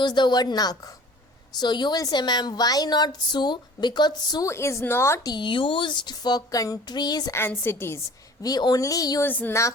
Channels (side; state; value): both; normal; correlation 0.47